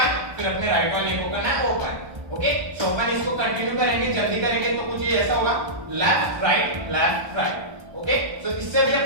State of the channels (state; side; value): late; left; 1.2 ms